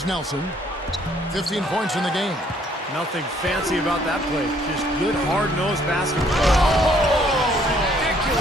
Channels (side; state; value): both; normal; correlation 0.63